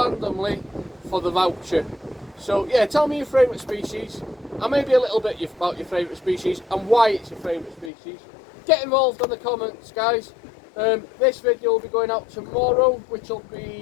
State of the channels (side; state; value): right; drops out; at 7.9 s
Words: for the voucher. So yeah, tell me your favourite species, and maybe a little bit about your favourite species and why it's your favourite species. Get involved in the comments, guys. This video will be going out tomorrow, which will